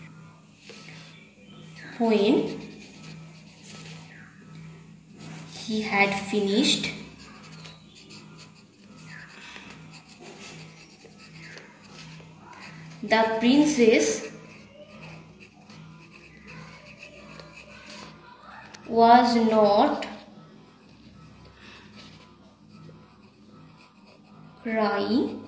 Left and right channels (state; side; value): identical; both; correlation 1.00